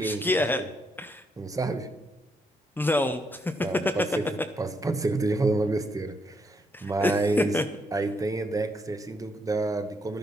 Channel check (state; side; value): normal; both; correlation 0.76